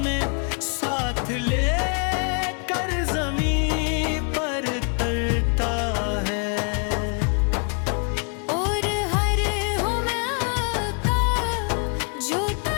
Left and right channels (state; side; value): quieter; right; 39.6 dB